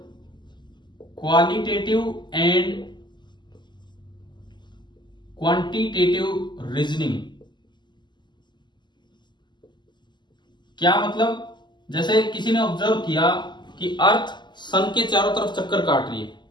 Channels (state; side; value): late; right; 0.21 ms